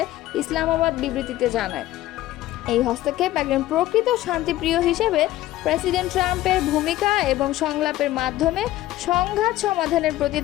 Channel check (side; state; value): right; quieter; 15.3 dB